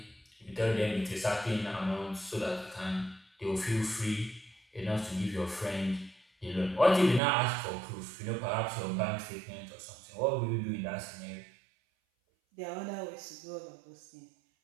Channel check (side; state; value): left; drops out; at 7.2 s